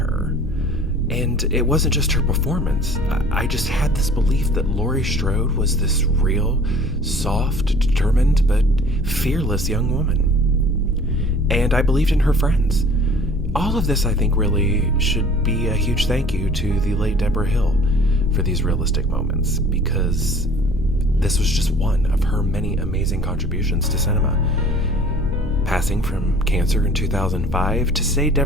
And it wasn't just her performance. I just had this belief that Laurie Strode was this real, soft, determined, but fearless young woman. And I believed in her friends. All of this, I think, really should be a huge thank you to the late Debra Hill for these realistic moments, because this was just one of her many amazing contributions to cinema. Passing from cancer in 2005, to say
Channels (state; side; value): normal; both; correlation 0.49